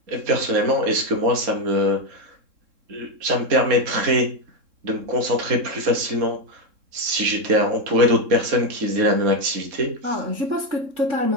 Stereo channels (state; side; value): late; left; 3.7 ms